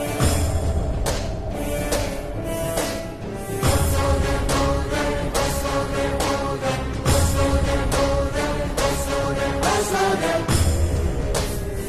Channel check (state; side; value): identical; both; correlation 1.00